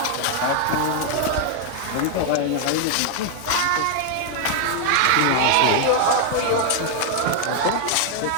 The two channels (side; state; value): both; different; correlation 0.00